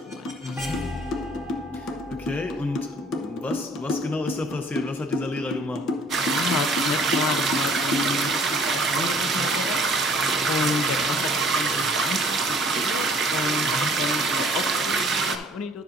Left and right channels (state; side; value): normal; both; correlation 0.55